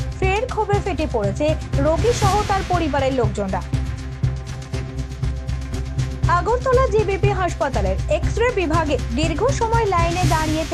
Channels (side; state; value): both; identical; correlation 1.00